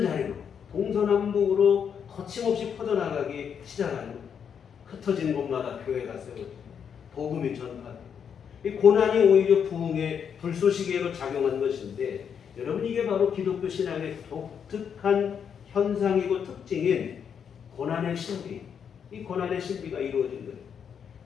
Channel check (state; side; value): quieter; right; 7.5 dB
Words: 자리로 동서남북으로 거침없이 퍼져나가기 시작하는, 흩어진 곳마다 교회가 세워지고 복음이 전파되고, 이 고난이 오히려 부흥의 불쏘시개로 작용한 것인데, 여러분, 이게 바로 기독교 신앙의 독특한 현상이고 특징인 고난의 신비, 이 고난의 신비가 이루어진 거예요.